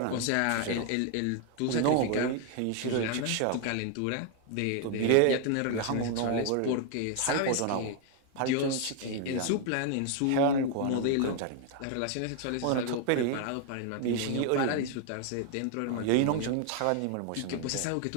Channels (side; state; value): both; different; correlation 0.00